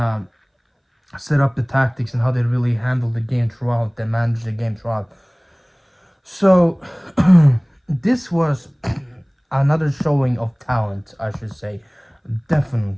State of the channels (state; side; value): identical; both; correlation 1.00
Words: of set up the tactics and how they really handle the game throughout, they manage the game throughout. So this was another showing of talent, I should say,